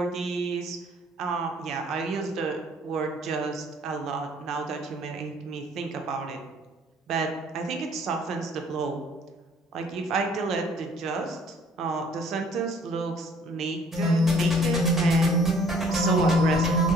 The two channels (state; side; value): normal; both; correlation 0.58